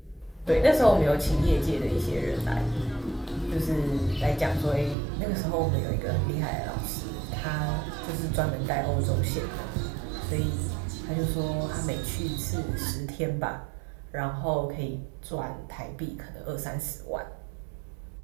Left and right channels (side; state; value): left; drops out; at 5.0 s